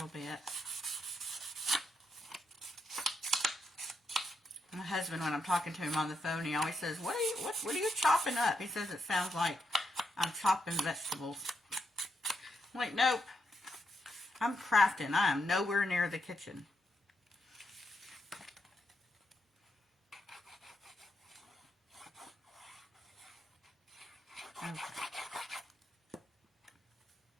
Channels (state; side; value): normal; both; correlation 0.81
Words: bit. My husband, when I'm talking to him on the phone, he always says, what are you chopping up? He says it sounds like I'm chopping vegetables. I'm like, nope. I'm crafting. I am nowhere near the kitchen. Okay.